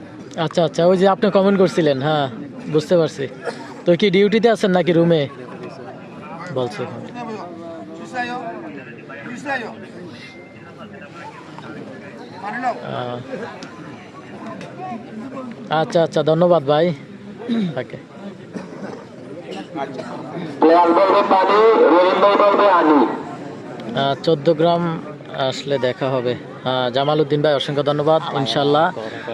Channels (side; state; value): both; identical; correlation 1.00